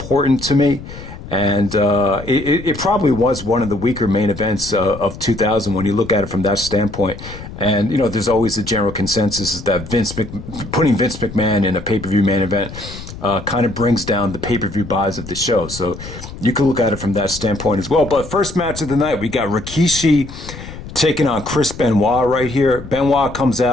to me. And it probably was one of the weaker main events of 2000 when you look at it from that standpoint. And, you know, there's always a general consensus is that putting Vince McMahon in a pay-per-view main event kind of brings down the pay-per-view buys of the show. So you can look at it from that standpoint as well. But first match of the night, we got Rikishi taking on Chris Benoit right here. Benoit comes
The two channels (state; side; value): noise; left; rumble, 13 dB below the sound